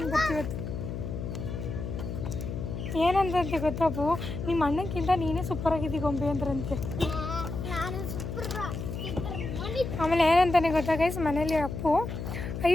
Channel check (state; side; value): noise; left; hum, 6 dB below the sound